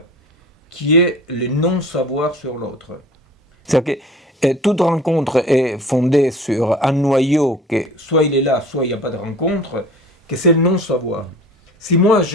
qui est le non-savoir sur l'autre. C'est-à-dire que toute rencontre est fondée sur un noyau que soit il est là, soit il n'y a pas de rencontre, que c'est le non-savoir. Si moi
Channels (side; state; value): both; normal; correlation 0.43